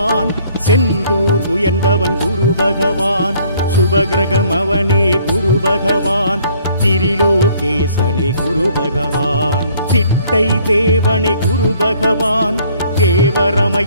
செந்தூர் உயர்ந்தவன் குரு பகவான், சுபகிரகம் அவனே குரு பகவான், திரிலோகேசனே குரு பகவான், திட்டை தேவனே குரு பகவான்,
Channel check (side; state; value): both; inverted; correlation -0.60